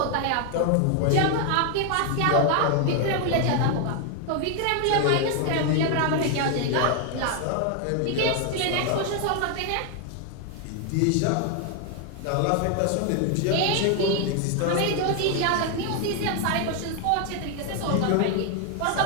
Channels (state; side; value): different; both; correlation 0.01